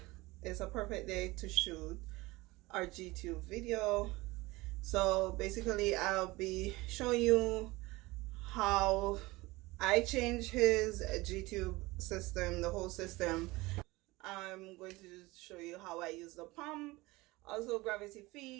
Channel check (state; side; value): quieter; left; 21.2 dB